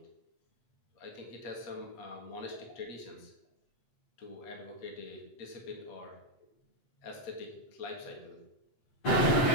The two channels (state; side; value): late; right; 7.9 ms